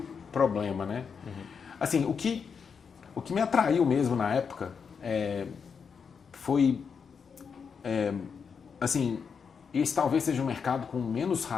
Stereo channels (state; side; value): quieter; right; 6.2 dB